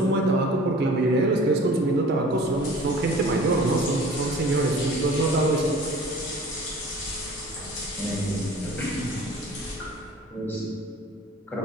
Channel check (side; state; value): both; normal; correlation 0.45